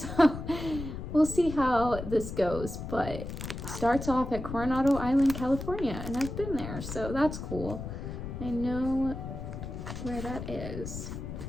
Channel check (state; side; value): noise; left; rumble, 7 dB below the sound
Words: we'll see how this goes, but starts off at Coronado Island, California, and I've been there, so that's cool. I know where that is.